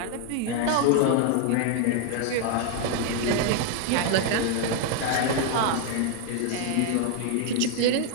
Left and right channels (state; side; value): different; both; correlation 0.00